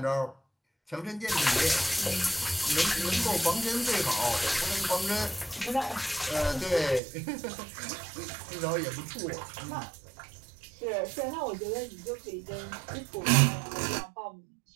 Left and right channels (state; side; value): drops out; left; at 7.0 s